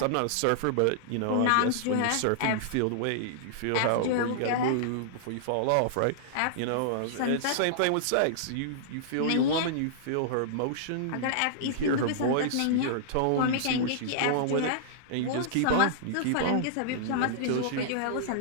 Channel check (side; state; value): both; different; correlation -0.01